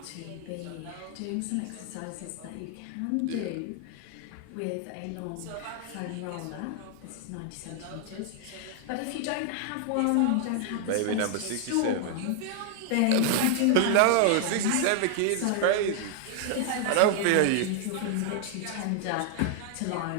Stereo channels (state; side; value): different; both; correlation 0.00